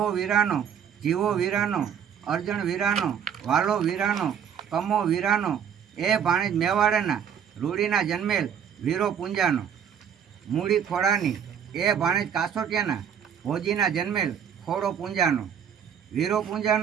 વીરાનો જીવો વીરાનો અર્જણ વીરાનો વાલો વીરાનો કમો વીરાનો એ ભાણેજ મેવાડેના રૂડીના જન્મેલ વીરો પૂંજાનો મૂડી ખોડાની એ ભાણેજ કાસોટિયાના ભોજીના જન્મેલ ખોડો પૂંજાનો વીરો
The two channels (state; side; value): quieter; left; 8.1 dB